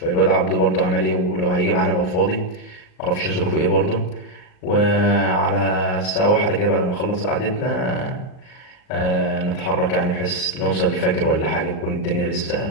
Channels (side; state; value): right; late; 38 ms